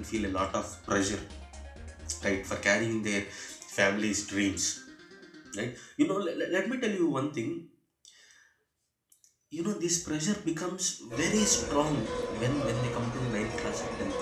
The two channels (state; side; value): identical; both; correlation 1.00